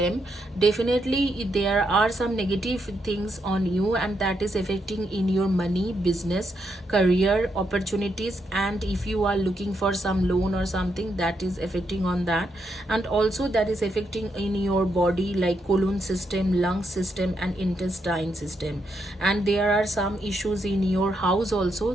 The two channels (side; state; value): both; normal; correlation 0.80